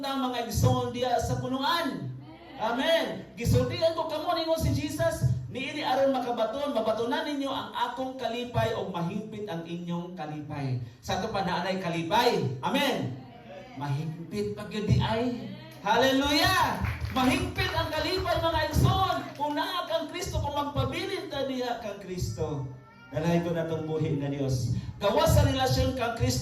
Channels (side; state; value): both; identical; correlation 1.00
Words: ta mga igsoon diya sa punuan. Amen. Gisultihan ko kamo ningon si Jesus, niini aron mabatunan ninyo ang akong kalipay o mahigpit ang inyong kalipay. Sa ito pa naanay kalipay. Amen. Mahigpit pag yun di ay. Hallelujah. Mahigpit ang kalipay mga igsoon. Kung naa kang Kristo, kung magpabilin ta diha kang Kristo. Dalahay ko na itong buhi na Diyos. Gawas sa relasyon kang